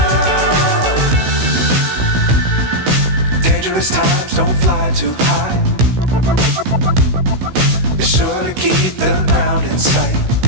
Times don't fly too high. Be sure to keep the ground in sight.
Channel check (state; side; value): late; left; 16 ms